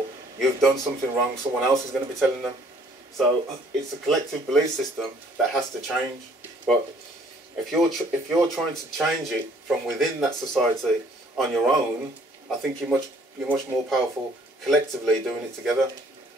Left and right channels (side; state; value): both; normal; correlation 0.60